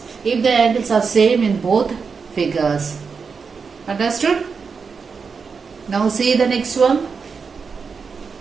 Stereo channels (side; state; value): left; quieter; 5.4 dB